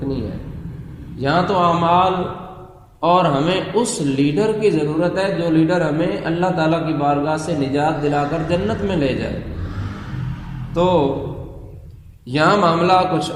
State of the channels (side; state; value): both; identical; correlation 1.00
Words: ہے۔ یہاں تو اعمال، اور ہمیں اس لیڈر کی ضرورت ہے جو لیڈر ہمیں اللہ تعالیٰ کی بارگاہ سے نجات دلا کر جنت میں لے جائے۔ تو یہاں معاملہ کچھ